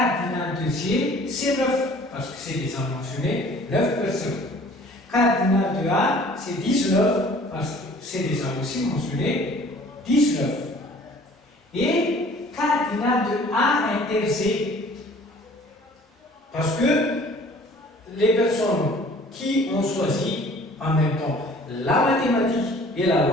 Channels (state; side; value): normal; both; correlation 0.52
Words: de G, c'est 9, parce que c'est déjà mentionné, 9 personnes. Cardinal de A, c'est 19, parce que c'est déjà aussi mentionné, 19. Et cardinal de A inter C, parce que les personnes qui ont choisi en même temps la mathématique et la